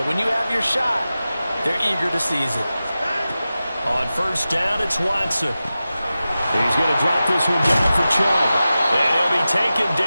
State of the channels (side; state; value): both; inverted; correlation -0.94